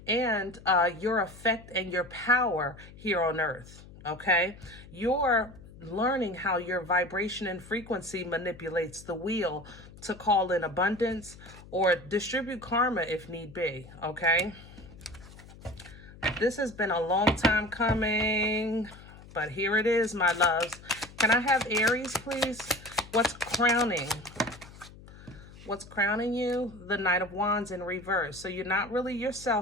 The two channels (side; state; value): left; noise; hum, 19 dB below the sound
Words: and your effect and your power here on earth, okay? You're learning how your vibration and frequency manipulates the wheel to call in abundance or distribute karma if need be, okay? This has been a long time coming, but here it is, my loves. Can I have Aries, please? What's crowning? What's crowning you? The Knight of Wands in reverse. So you're not really